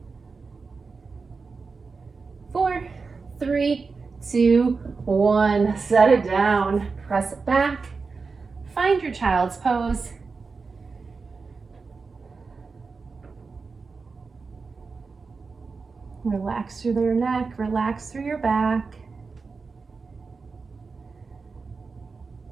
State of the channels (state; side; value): quieter; left; 4.6 dB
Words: Four, 3, 2, 1. Set it down. Press it back. Find your child's pose. Relax through your neck, relax through your back.